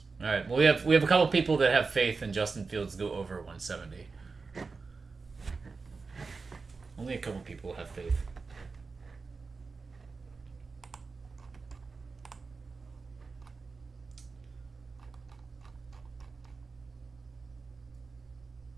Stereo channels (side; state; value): left; quieter; 4.4 dB